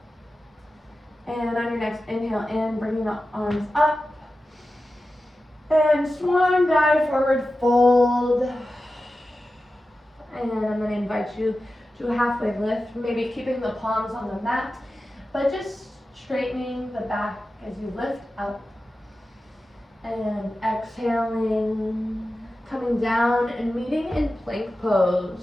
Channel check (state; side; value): normal; both; correlation 0.93